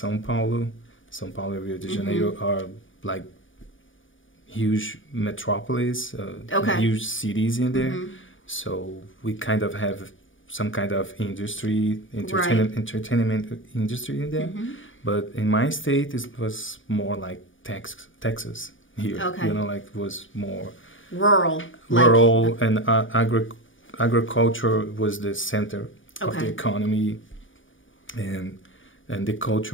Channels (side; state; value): right; late; 0.57 ms